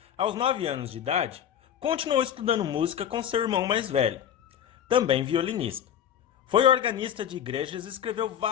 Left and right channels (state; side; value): quieter; right; 9.5 dB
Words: aos 9 anos de idade, continuou estudando música com seu irmão mais velho, também violinista. Foi organista de igrejas e escreveu